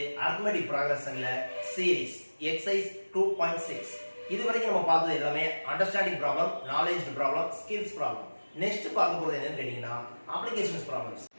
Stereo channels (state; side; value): inverted; both; correlation -1.00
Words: arithmetic progressionல series exercise 2.6. இதுவரைக்கும் நம்ம பார்த்தது எல்லாமே understanding problem, knowledge problem, skills problem. Next பார்க்க போறது என்னன்னு கேட்டிங்கனா applications problems.